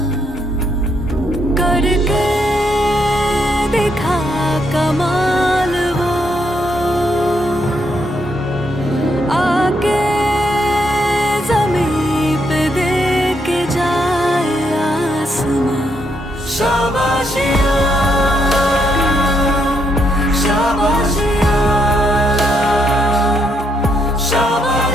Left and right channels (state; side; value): normal; both; correlation 0.76